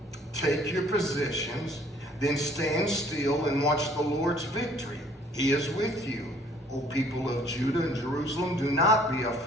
Take your positions, then stand still and watch the Lord's victory. He is with you. O people of Judah and Jerusalem, do not be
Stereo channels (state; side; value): normal; both; correlation 0.58